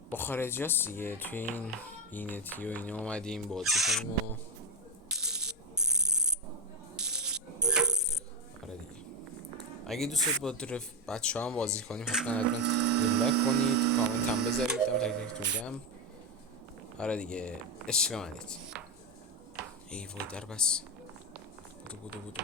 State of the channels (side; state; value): both; normal; correlation 0.09